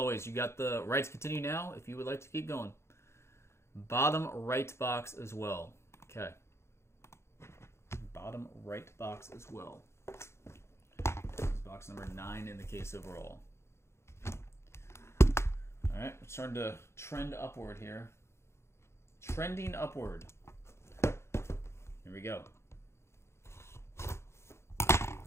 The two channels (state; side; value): late; right; 0.13 ms